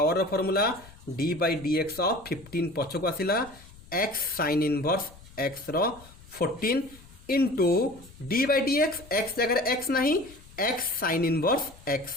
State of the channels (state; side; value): noise; left; rumble, 21 dB below the sound